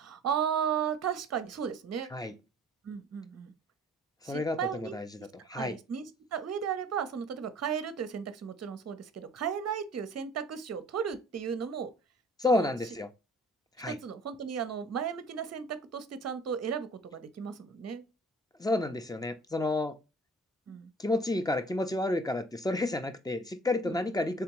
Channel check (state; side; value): normal; both; correlation 0.50